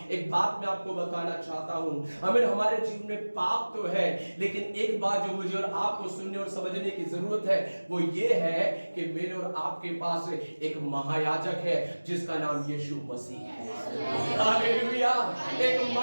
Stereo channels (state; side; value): inverted; both; correlation -1.00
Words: एक बात मैं आपको बताना चाहता हूं। हमें हमारे जीवन में पाप तो है, लेकिन एक बात जो मुझे और आपको सुनने और समझने की जरूरत है, वो ये है कि मेरे और आपके पास एक महायाजक है जिसका नाम यीशु मसीह है। हालेलुया। एक